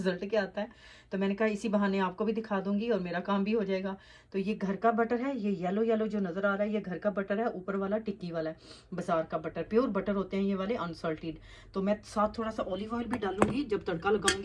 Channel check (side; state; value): both; identical; correlation 1.00